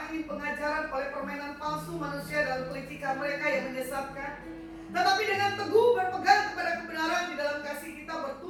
angin pengajaran, oleh permainan palsu manusia dalam kelicikan mereka yang menyesatkan, tetapi dengan teguh berpegang kepada kebenaran di dalam kasih kita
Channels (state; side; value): identical; both; correlation 1.00